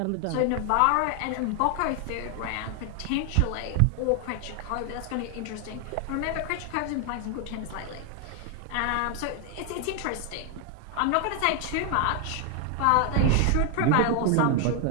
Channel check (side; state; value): both; different; correlation 0.00